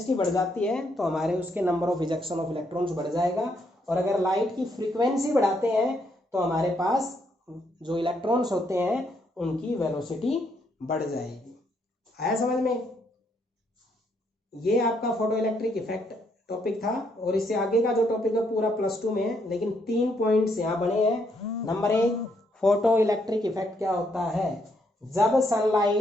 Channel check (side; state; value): both; normal; correlation 0.74